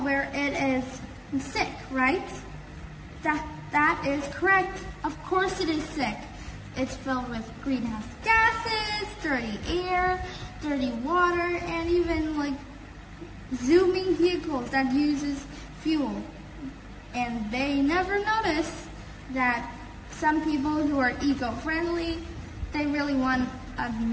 where it is sick, right? That is correct. Of course it is sick. It's filled with greenhouse gases, dirty air, dirty water, and even like zooming vehicles that uses fuel. And they never notice that some people who are eco-friendly, they really want a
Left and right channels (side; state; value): both; identical; correlation 1.00